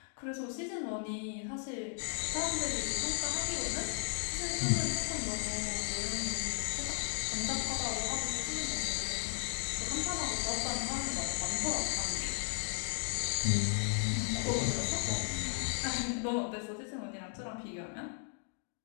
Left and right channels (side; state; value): right; silent; 54 dB below the other